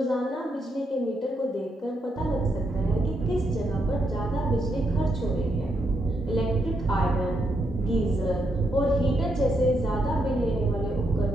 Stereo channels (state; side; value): normal; both; correlation 0.79